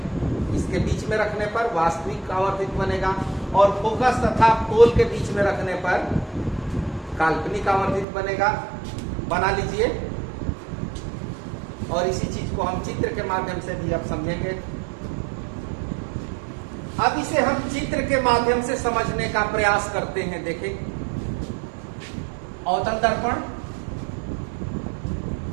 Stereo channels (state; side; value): drops out; left; at 8.1 s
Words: इसके बीच में रखने पर वास्तविक आवर्धित बनेगा, और फोकस तथा पोल के बीच में रखने पर काल्पनिक आवर्धित बनेगा। बना लीजिए, और इसी चीज को हम चित्र के माध्यम से भी अब समझेंगे। अब इसे हम चित्र के माध्यम से समझने का प्रयास करते हैं। देखें, अवतल दर्पण,